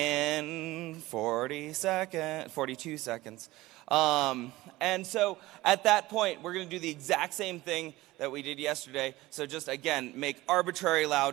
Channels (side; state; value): left; quieter; 18.4 dB